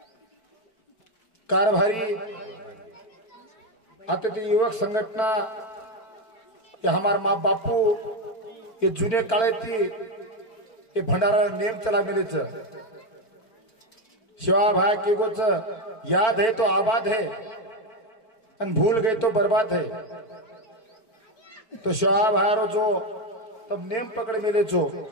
कारभारी आता युवक संघटना ये हमार माँ बापू ये जुने काळे थी ये भंडारा नेम चला मिले शिवा भाई के गोच याद है तो आबाद है अन भूल गए तो बर्बाद है तो शिवा भाई जो तब नेम पकड़ मिले जो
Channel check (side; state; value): right; late; 4.5 ms